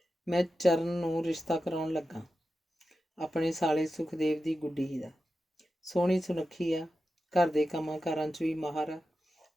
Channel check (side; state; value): both; normal; correlation 0.91